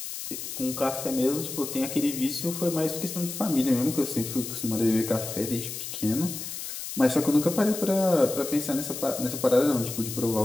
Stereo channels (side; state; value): left; noise; hiss, 7 dB below the sound